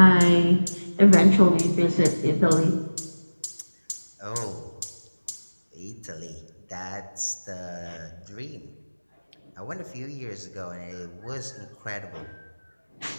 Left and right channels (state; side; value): inverted; both; correlation -1.00